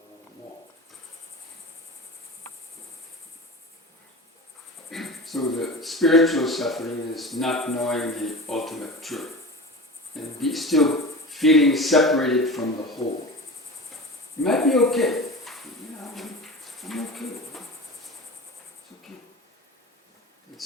more. So the spiritual suffering is not knowing the ultimate truth and still feeling separated from the whole. You might be okay. I'm okay. It's okay. But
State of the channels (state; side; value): normal; both; correlation 0.31